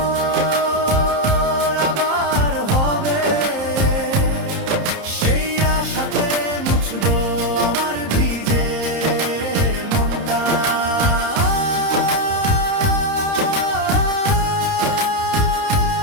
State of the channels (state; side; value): late; left; 30 ms